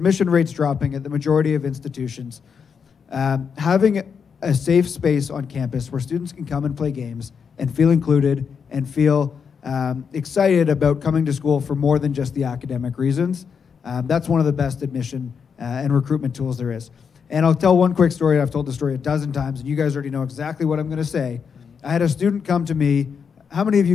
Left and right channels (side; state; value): right; quieter; 6.4 dB